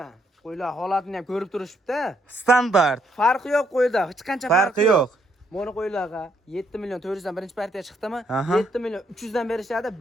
Qo'ylar holatini ham ko'rib turishibdi. Standart. Farqi yo'q qo'yda, hech qancha farqi yo'q. Mana qo'ylarga 7 million 400 dan birinchi partiya chiqdimi? 7 million 300 dan berishadi.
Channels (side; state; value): both; normal; correlation 0.73